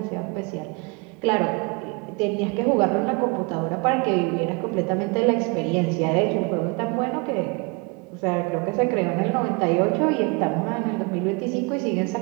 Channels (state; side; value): quieter; left; 29.1 dB